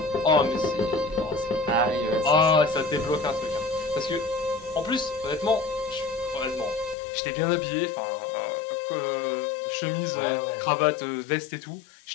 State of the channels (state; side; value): drops out; right; at 7.0 s